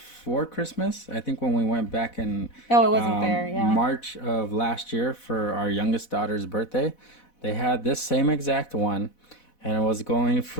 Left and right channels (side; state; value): right; late; 4.1 ms